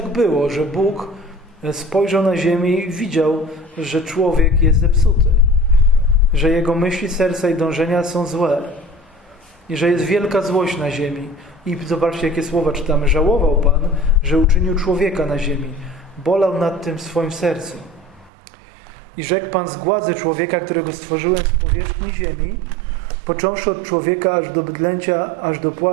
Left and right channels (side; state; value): left; drops out; at 18.3 s